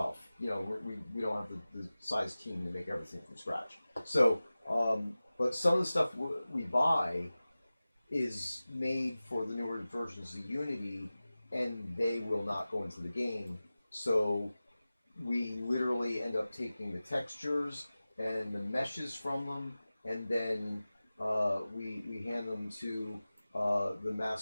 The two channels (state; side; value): inverted; both; correlation -0.97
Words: We don't have the size team to make everything from scratch. So, but some of the stuff we buy is made for the newer versions of Unity, and they will not go into the game. So we literally end up taking the textures and the meshes from them, and then we hand them to the